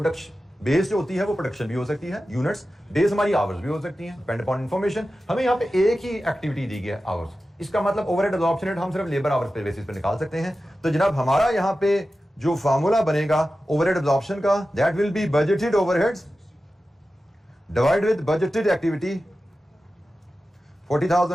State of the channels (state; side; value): normal; both; correlation 0.93